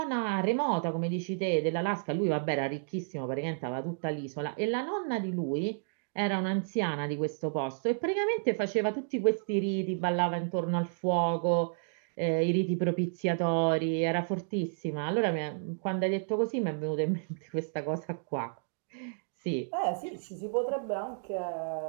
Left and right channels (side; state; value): left; silent; digital silence